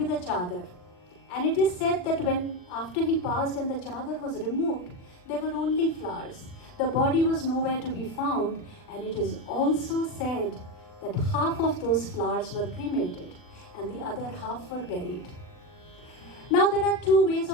a chadar. And it is said that after he passed and the chadar was removed, there were only flowers. The body was nowhere to be found, and it is also said that half of those flowers were cremated and the other half were buried. Now there are two ways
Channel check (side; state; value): right; late; 39 ms